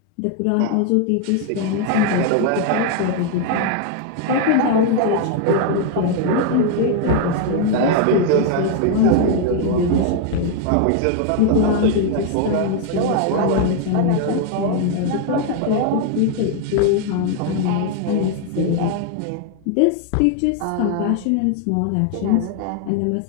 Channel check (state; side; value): different; both; correlation 0.00